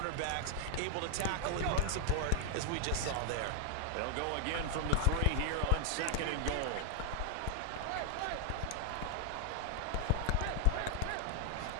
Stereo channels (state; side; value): different; both; correlation 0.00